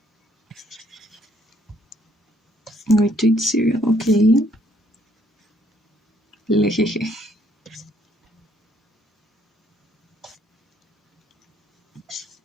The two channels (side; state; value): both; normal; correlation 0.67